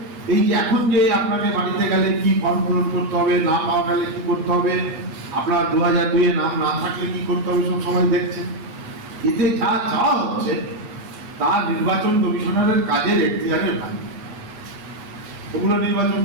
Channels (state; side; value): late; left; 9.2 ms